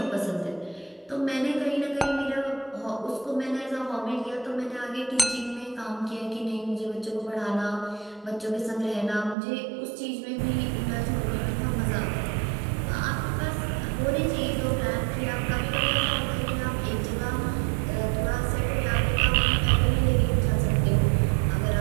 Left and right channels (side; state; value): left; drops out; at 9.3 s